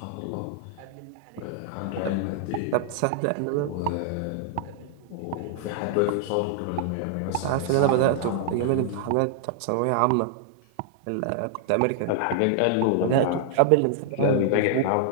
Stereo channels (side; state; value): both; different; correlation 0.00